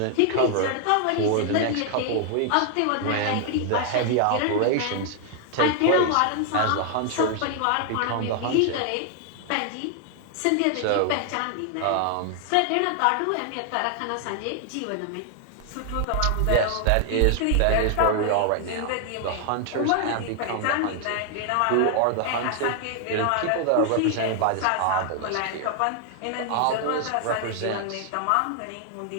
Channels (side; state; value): both; different; correlation 0.00